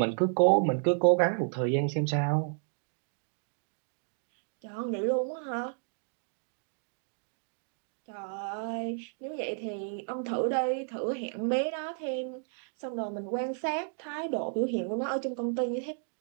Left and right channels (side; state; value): left; silent; 56 dB below the other